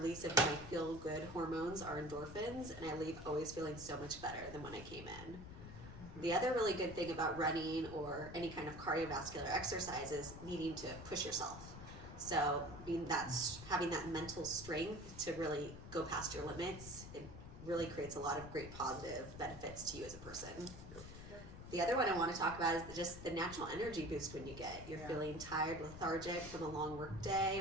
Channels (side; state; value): left; noise; rumble, 12 dB below the sound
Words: of my feel-good hormones, our endorphins, and I leave always feeling so much better than when I came in. The other really good thing about running or any kind of cardiovascular exercise is needing to push yourself. So having that mental strength to really go past your limits, it really creates a lot of great positive benefits to you as a person. The other one I want to talk about is just the natural energy boost when you get. You're feeling tired, lethargic from a long work day,